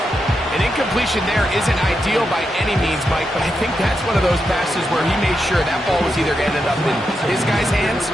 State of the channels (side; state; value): both; normal; correlation 0.85